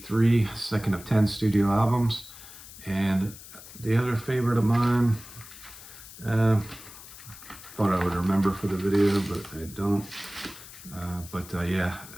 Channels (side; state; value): left; noise; hiss, 16 dB below the sound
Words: second of 10 studio albums. And the other favorite of mine, thought I would remember for the video, but I don't. Yeah,